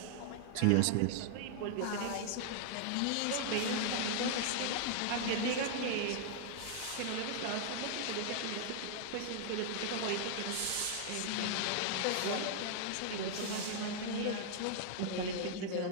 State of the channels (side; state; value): both; different; correlation -0.01